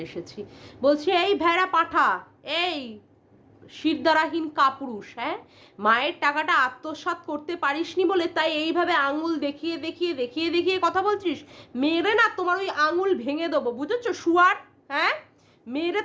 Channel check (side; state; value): both; identical; correlation 1.00